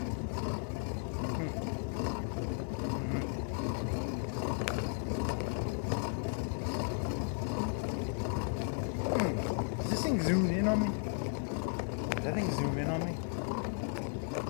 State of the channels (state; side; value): silent; right; 54 dB below the other